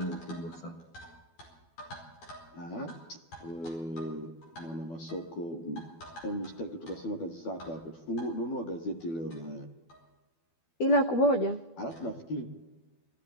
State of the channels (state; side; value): late; right; 12 ms